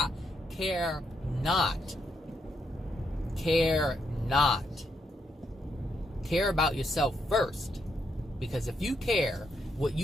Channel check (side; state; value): both; normal; correlation 0.79